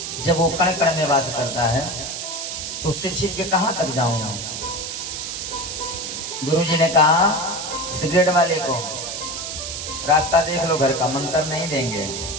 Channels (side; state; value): right; noise; hiss, 5 dB below the sound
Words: जब वो कण कण में वास करता है तो उससे छिप के कहां तक जाऊंगा। गुरुजी ने कहा सिगरेट वाले को रास्ता देख लो, घर का मंत्र नहीं देंगे।